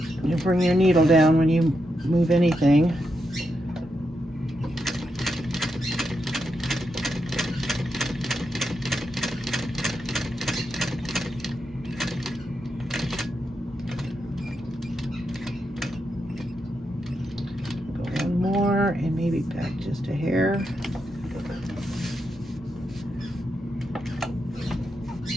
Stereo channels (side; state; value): both; normal; correlation 0.84